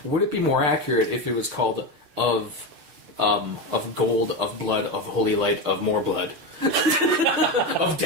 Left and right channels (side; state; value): left; late; 6.6 ms